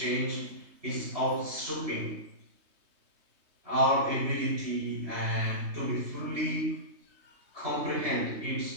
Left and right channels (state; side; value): late; left; 3.2 ms